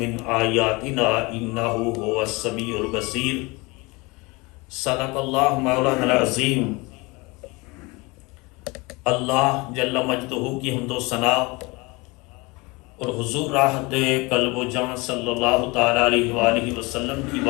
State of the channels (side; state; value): right; quieter; 25.4 dB